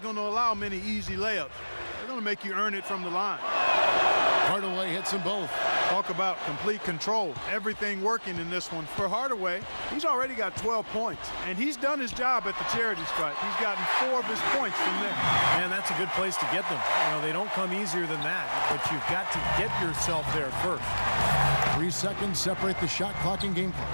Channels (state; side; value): inverted; both; correlation -1.00